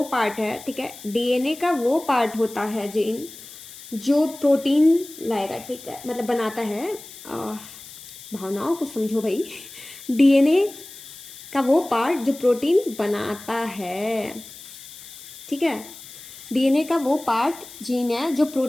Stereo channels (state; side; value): noise; left; hiss, 16 dB below the sound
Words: पार्ट है, ठीक है। डीएनए का वो पार्ट होता है जीन जो प्रोटीन लाएगा, ठीक है, मतलब बनाता है। भावनाओं को समझो भाई। डीएनए का वो पार्ट जो प्रोटीन बनाता है, ठीक है। डीएनए का वो पार्ट जीन है जो